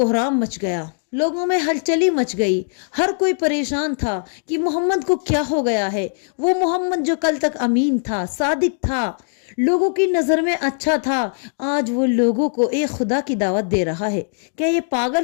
مچ گیا، لوگوں میں ہلچلی مچ گئی۔ ہر کوئی پریشان تھا کہ محمد کو کیا ہو گیا ہے۔ وہ محمد جو کل تک امین تھا، صادق تھا، لوگوں کی نظر میں اچھا تھا، آج وہ لوگوں کو ایک خدا کی دعوت دے رہا ہے، کیا یہ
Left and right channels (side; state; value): right; silent; digital silence